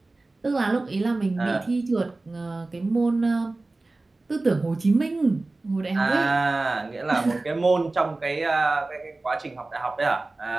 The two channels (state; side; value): quieter; left; 3.2 dB